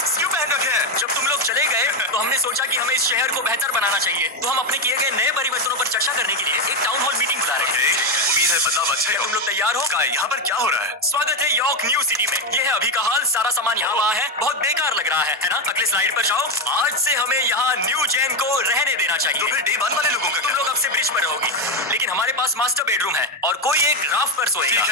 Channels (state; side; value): normal; both; correlation 0.09